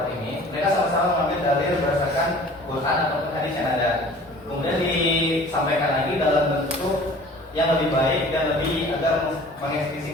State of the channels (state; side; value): normal; both; correlation 0.46